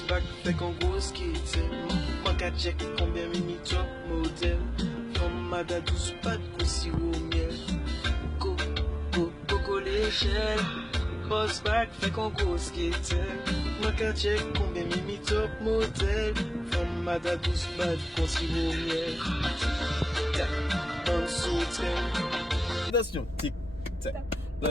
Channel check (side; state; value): both; normal; correlation 0.97